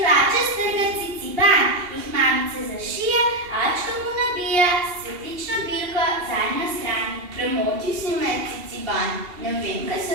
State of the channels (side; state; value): left; late; 2.8 ms